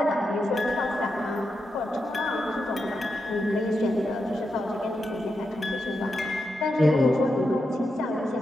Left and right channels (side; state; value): both; normal; correlation 0.86